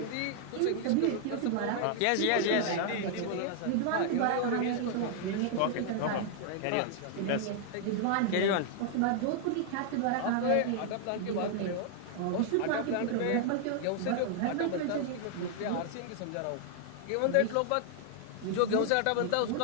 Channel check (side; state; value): both; different; correlation 0.00